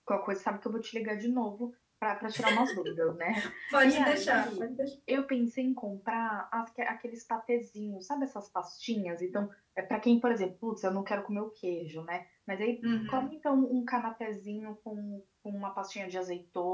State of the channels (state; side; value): identical; both; correlation 1.00